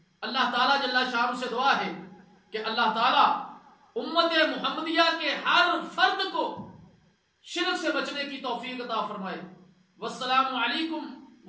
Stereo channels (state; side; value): identical; both; correlation 1.00